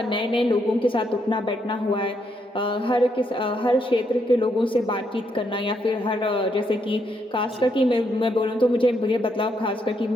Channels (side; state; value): both; normal; correlation 0.77